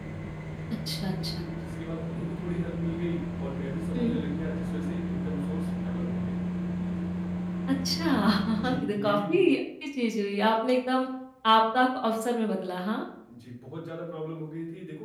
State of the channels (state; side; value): identical; both; correlation 1.00